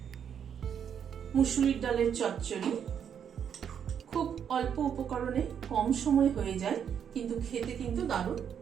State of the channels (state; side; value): quieter; left; 8.2 dB